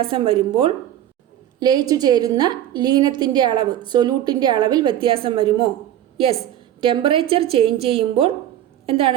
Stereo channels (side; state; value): left; quieter; 11.8 dB